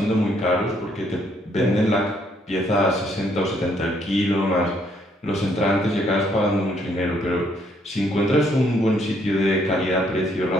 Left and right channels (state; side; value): normal; both; correlation 0.69